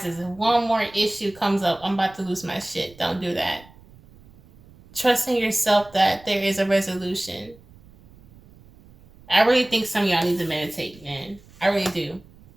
and one more issue comes up, I'm about to lose my shit. Don't do that. Trust in yourself that there is a resolution. I really think some of y'all need to meditate, man. I really do.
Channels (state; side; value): noise; right; rumble, 25 dB below the sound